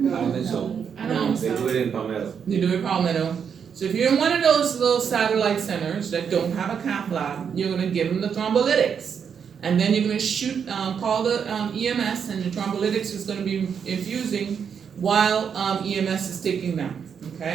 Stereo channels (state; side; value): quieter; left; 7.1 dB